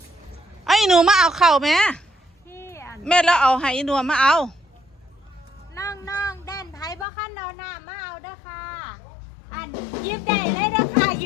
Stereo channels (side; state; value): right; drops out; at 7.1 s